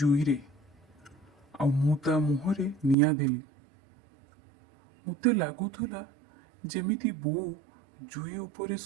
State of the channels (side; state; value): left; drops out; at 3.0 s